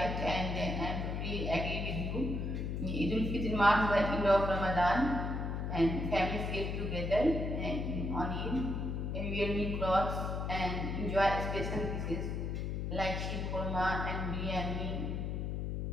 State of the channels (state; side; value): noise; left; hum, 2 dB below the sound